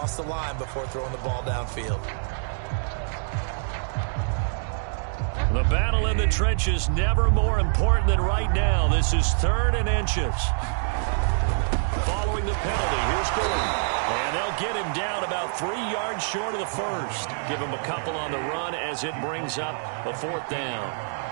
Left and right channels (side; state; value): left; silent; digital silence